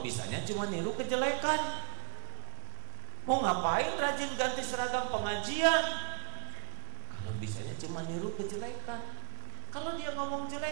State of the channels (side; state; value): left; silent; digital silence